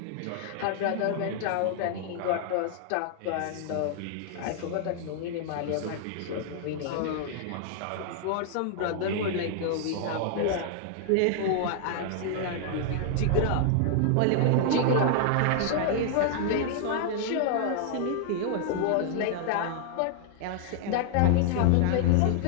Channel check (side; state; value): both; different; correlation 0.00